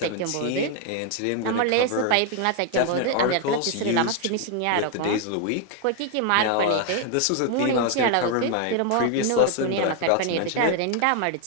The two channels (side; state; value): both; different; correlation 0.00